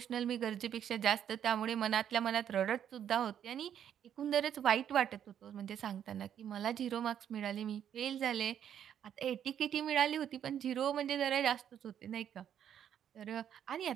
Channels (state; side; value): quieter; left; 9.5 dB